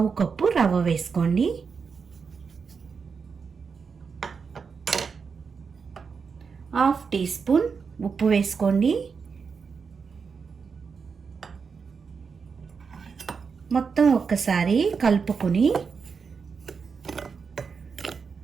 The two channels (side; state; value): left; quieter; 5.6 dB